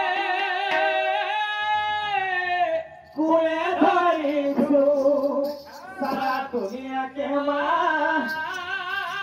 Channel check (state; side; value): identical; both; correlation 1.00